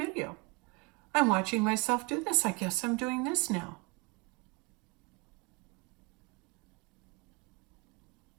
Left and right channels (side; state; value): left; quieter; 28.3 dB